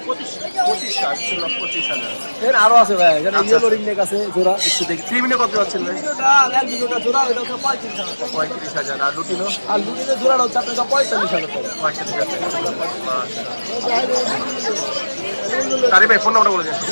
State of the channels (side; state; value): both; inverted; correlation -1.00